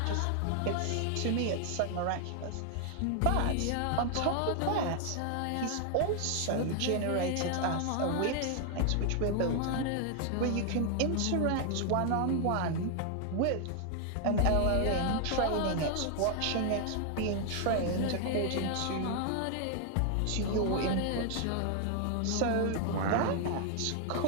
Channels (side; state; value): both; different; correlation 0.00